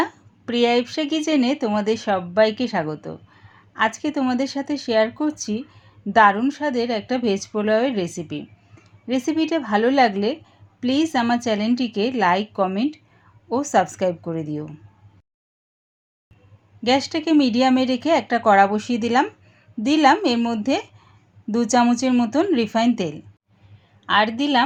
প্রিয়া ইপসা কিচেনে তোমাদের সবাইকে স্বাগত। আজকে তোমাদের সাথে শেয়ার করছি দারুণ স্বাদের একটা ভেজ পোলাওয়ের রেসিপিটা ভালো লাগলে প্লিজ আমার চ্যানেলটিকে লাইক, কমেন্ট ও সাবস্ক্রাইব করে দিও। গ্যাসটাকে মিডিয়ামে রেখে একটা কড়া বসিয়ে দিলাম এর মধ্যে 2 চামচের মতন রিফাইন তেল, আর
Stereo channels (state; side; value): identical; both; correlation 1.00